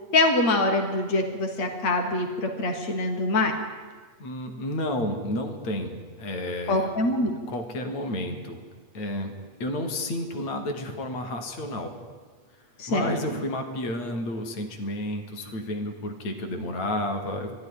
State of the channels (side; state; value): right; late; 8.4 ms